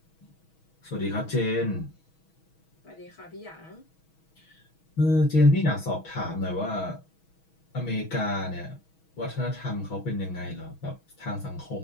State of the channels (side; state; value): right; late; 6.2 ms